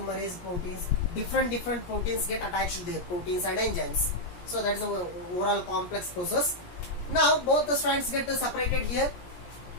proteins, different proteins get attached there, proteins and enzymes. So that is the overall complex process. Now both the strands get separated here.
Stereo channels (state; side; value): late; right; 17 ms